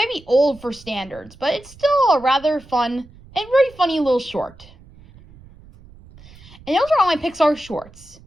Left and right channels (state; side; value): noise; right; rumble, 23 dB below the sound